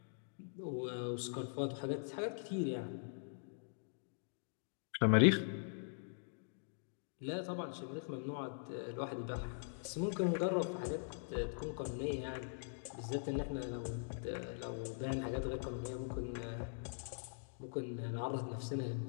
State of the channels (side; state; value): right; silent; digital silence